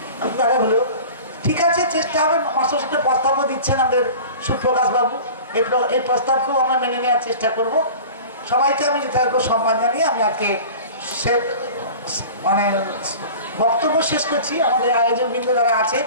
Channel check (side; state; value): both; inverted; correlation -0.39